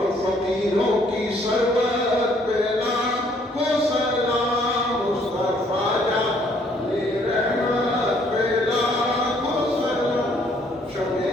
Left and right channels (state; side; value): normal; both; correlation 0.64